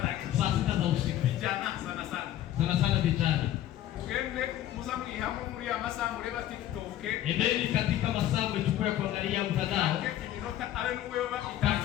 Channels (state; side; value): quieter; right; 12.7 dB